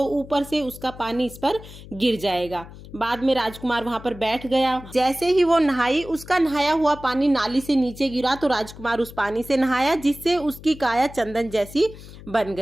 ऊपर से उसका पानी इस पर गिर जाएगा। बाद में राजकुमार वहां पर बैठ गया। जैसे ही वो नहाई, उसका नहाया हुआ पानी नाली से नीचे गिरा तो राजकुमार उस पानी से नहाया, जिससे उसकी काया चंदन जैसी बन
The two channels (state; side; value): noise; left; hum, 17 dB below the sound